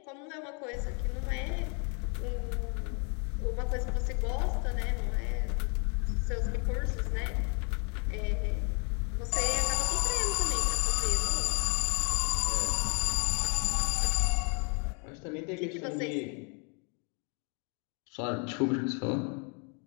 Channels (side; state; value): right; quieter; 36.8 dB